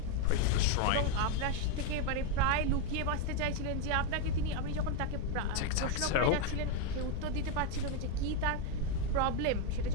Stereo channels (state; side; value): different; both; correlation 0.02